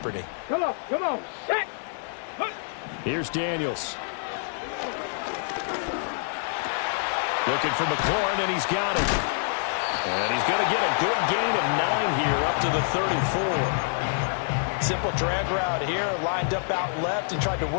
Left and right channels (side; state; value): right; silent; 60 dB below the other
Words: Come on, set. Here's Daniels. Looking for McLaurin, and he's got it. And he's going to get a good gain of 9 here up to the 34. Simple drag route here, lined up out left and tried to